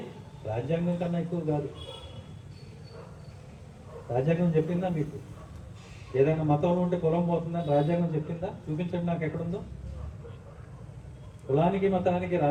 రాజ్యాంగం కన్నా ఎక్కువ కాదు. రాజ్యాంగం చెప్పిందా మీకు? ఏదైనా మతంలో ఉంటే కులం పోతుందని రాజ్యాంగం చెప్పిందా? చూపించండి నాకు ఎక్కడుందో. కులానికి మతానికి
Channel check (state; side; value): identical; both; correlation 1.00